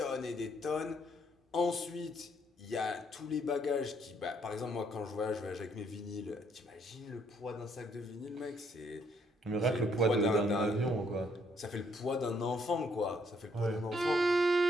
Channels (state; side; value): normal; both; correlation 0.69